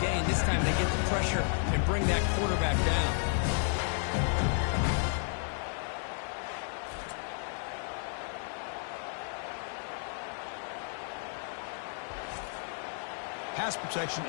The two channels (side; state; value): right; silent; 56 dB below the other